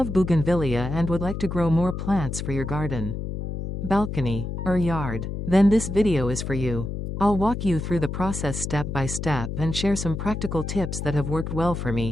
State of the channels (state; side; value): noise; left; hum, 5 dB below the sound